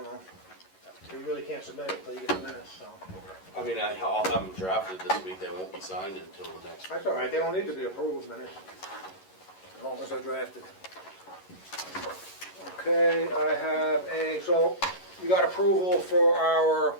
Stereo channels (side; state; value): right; late; 11 ms